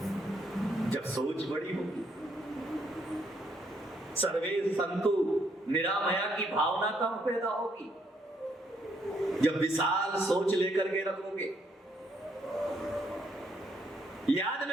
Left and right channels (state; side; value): normal; both; correlation 0.72